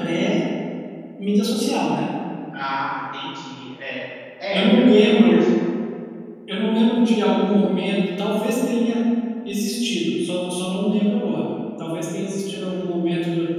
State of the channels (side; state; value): both; identical; correlation 1.00